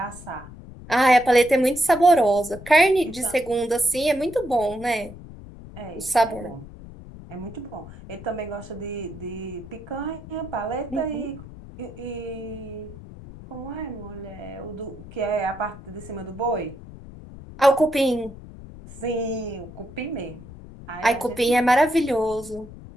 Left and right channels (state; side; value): noise; left; rumble, 16 dB below the sound